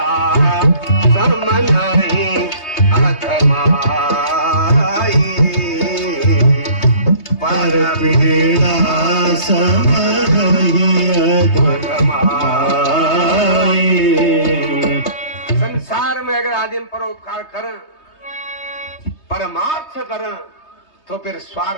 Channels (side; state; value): right; late; 3.2 ms